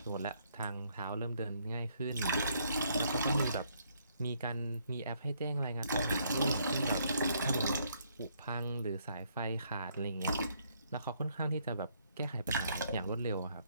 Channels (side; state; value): both; inverted; correlation -0.70